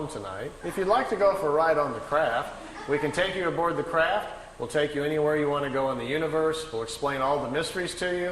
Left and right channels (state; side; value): identical; both; correlation 1.00